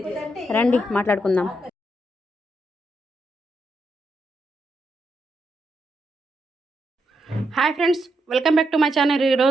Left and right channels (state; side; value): normal; both; correlation 0.81